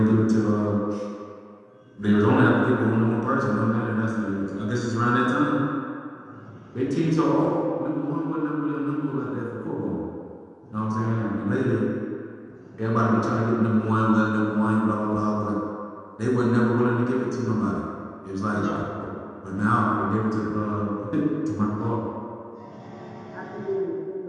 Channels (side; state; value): both; identical; correlation 1.00